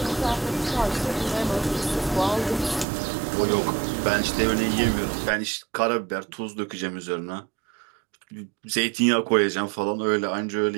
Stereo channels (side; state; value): left; drops out; at 2.9 s